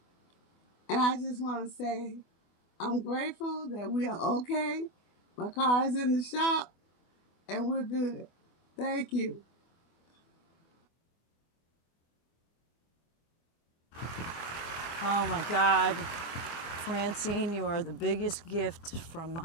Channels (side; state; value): right; late; 24 ms